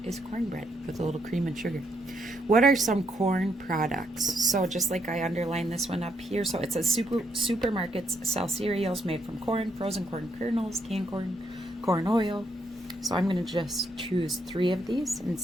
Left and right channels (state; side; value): normal; both; correlation 0.75